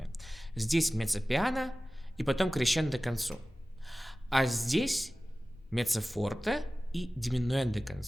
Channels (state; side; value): normal; both; correlation 0.97